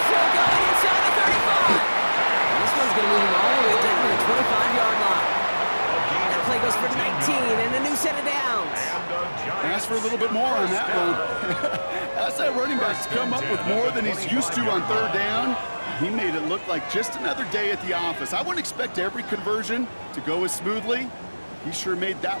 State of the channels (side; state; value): both; inverted; correlation -1.00